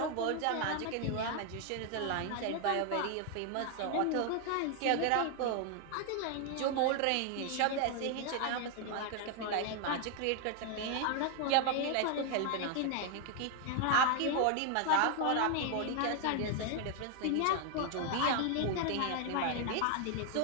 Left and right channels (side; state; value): both; different; correlation 0.00